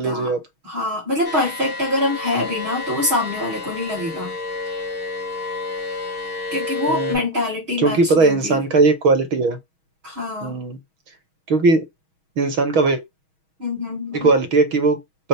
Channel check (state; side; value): late; left; 6.3 ms